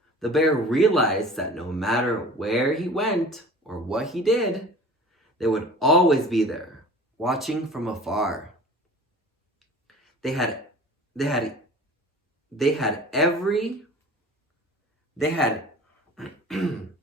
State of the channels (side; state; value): both; normal; correlation 0.42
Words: The bear realized that no matter where he went or what he did, they would always be there, watching from afar. They had